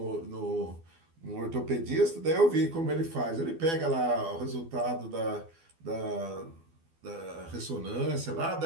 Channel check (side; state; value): left; late; 12 ms